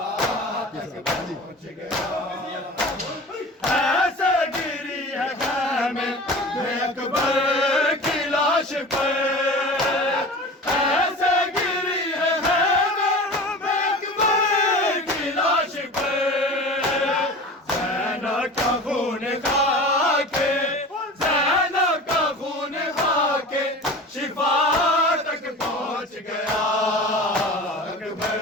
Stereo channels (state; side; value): normal; both; correlation 0.36